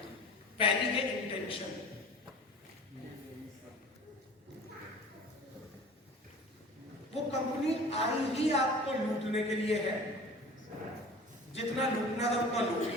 पहली है इंटेंशन, वो कंपनी आई ही आपको लूटने के लिए है, जितना लूटना था उतना लूट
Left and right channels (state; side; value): normal; both; correlation 0.41